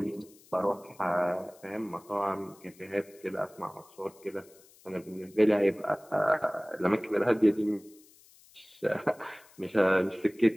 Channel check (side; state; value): left; noise; hiss, 26 dB below the sound